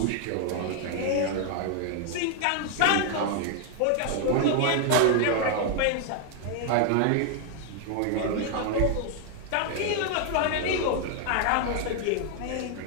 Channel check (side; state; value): both; different; correlation 0.00